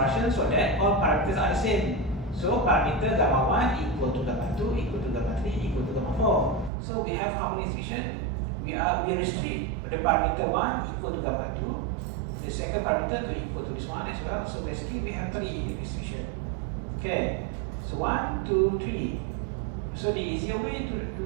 so that all parameters are the same. So parameter gamma 1 equal to gamma 2 equal to gamma 3 equal to gamma 4. So we have how many restriction? We restrict the parameter 1 equal to gamma 2, the second parameter 2 equal to this one as well. So basically we have 3 restriction. Okay, so 1, 2, 3. So the easier way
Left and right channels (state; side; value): drops out; left; at 6.7 s